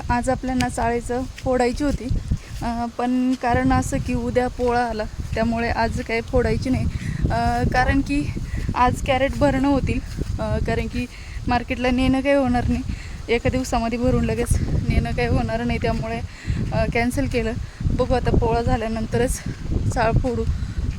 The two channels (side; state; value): both; identical; correlation 1.00